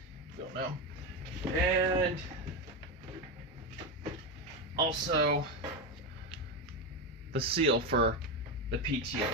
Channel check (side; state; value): both; normal; correlation 0.13